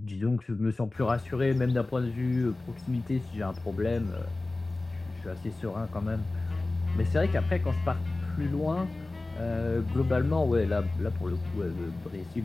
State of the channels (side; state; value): right; quieter; 3.1 dB